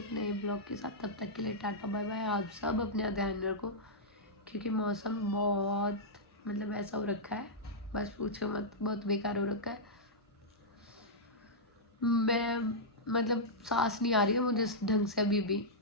एक नए ब्लॉग के साथ। तब तक के लिए टाटा बाय बाय। आप सब अपना ध्यान रखो, क्योंकि मौसम बहुत मतलब ऐसा हो रखा है, बस पूछो मत, बहुत बेकार हो रखा है। मैं मतलब सांस नहीं आ रही है मुझे ढंग से अभी भी,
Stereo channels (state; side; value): normal; both; correlation -0.10